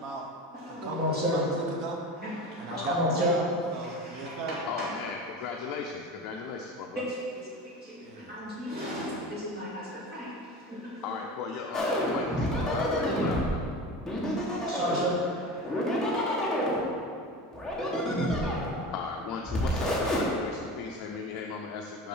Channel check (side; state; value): both; normal; correlation 0.31